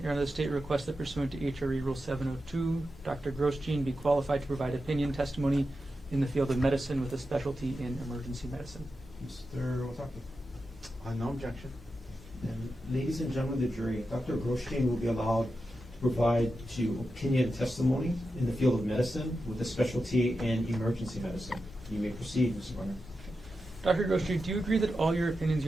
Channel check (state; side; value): normal; both; correlation 0.90